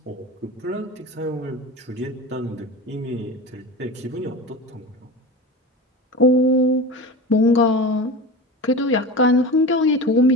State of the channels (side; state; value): both; normal; correlation 0.29